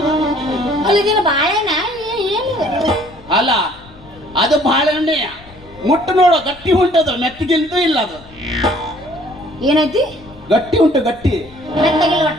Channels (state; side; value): noise; left; rumble, 23 dB below the sound